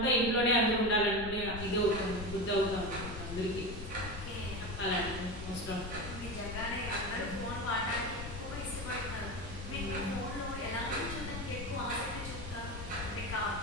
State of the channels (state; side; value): noise; left; rumble, 9 dB below the sound